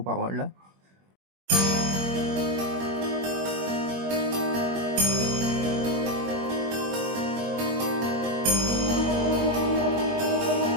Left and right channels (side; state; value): left; late; 21 ms